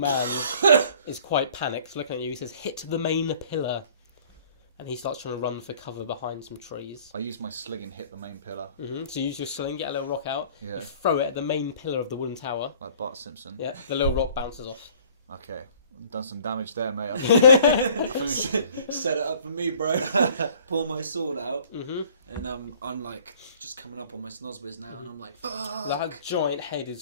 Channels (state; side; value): inverted; both; correlation -0.53